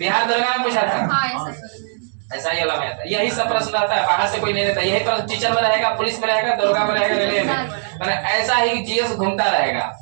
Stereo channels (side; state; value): left; silent; digital silence